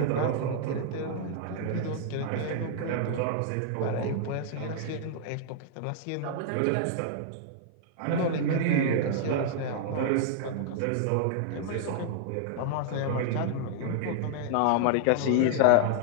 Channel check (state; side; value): different; both; correlation -0.01